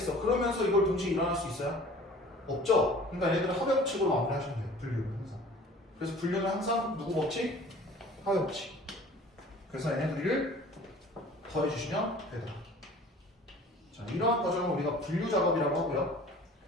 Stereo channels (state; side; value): normal; both; correlation 0.47